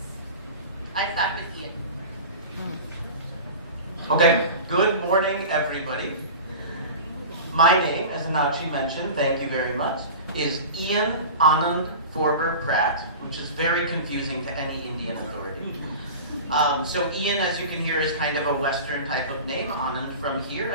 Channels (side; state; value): both; inverted; correlation -0.34